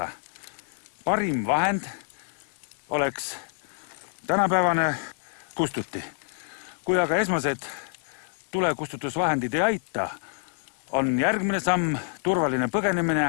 Parim vahend oleks tänapäevane kustuti. Kui aga esmased tulekustutusvahendid ei aita, on järgmine samm turvaline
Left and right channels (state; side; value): silent; right; 60 dB below the other